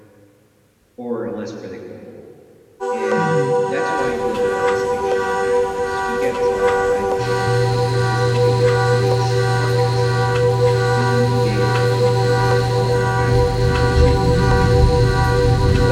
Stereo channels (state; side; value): identical; both; correlation 1.00